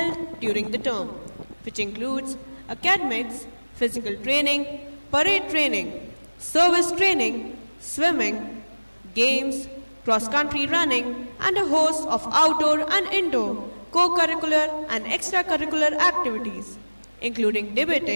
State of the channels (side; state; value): both; inverted; correlation -1.00